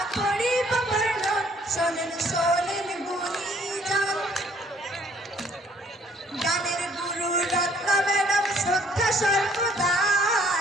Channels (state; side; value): normal; both; correlation 0.61